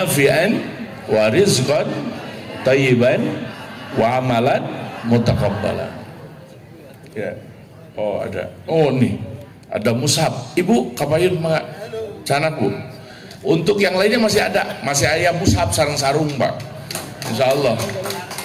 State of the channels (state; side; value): identical; both; correlation 1.00